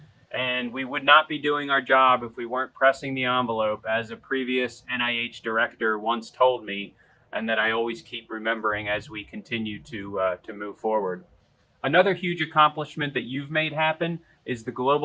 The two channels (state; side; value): identical; both; correlation 1.00